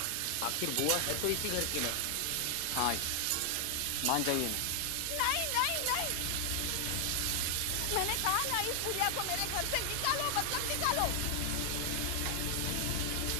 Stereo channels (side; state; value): both; different; correlation 0.00